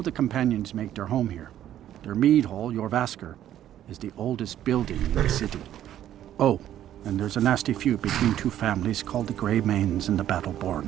the Companions make their home here. Their mead hall, Jorvaskar, is the oldest building in the city. Oh, and there's a nasty feud between two families called the Greymanes and the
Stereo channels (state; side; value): quieter; left; 11.6 dB